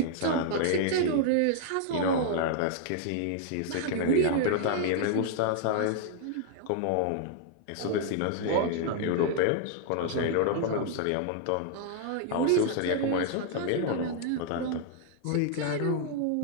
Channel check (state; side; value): different; both; correlation -0.01